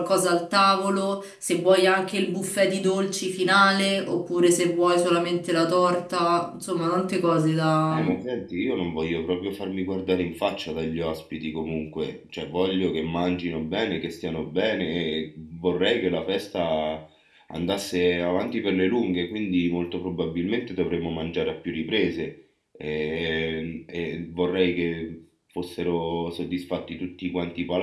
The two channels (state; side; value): identical; both; correlation 1.00